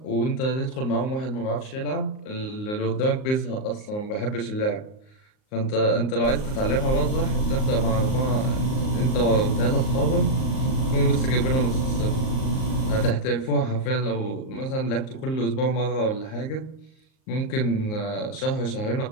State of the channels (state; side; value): late; right; 38 ms